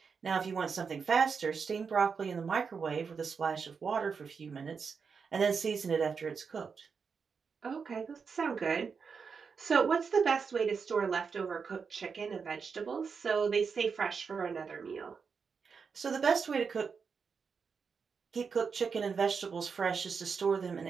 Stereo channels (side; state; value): left; quieter; 5.7 dB